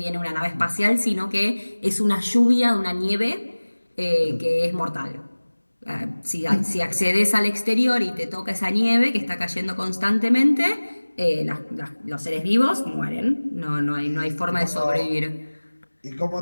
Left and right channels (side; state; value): both; inverted; correlation -1.00